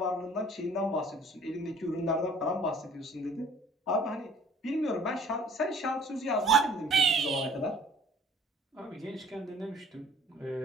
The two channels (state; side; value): normal; both; correlation 0.53